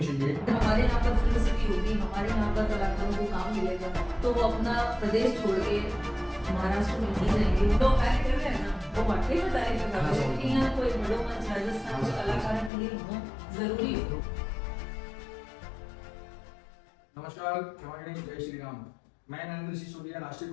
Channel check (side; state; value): right; drops out; at 12.7 s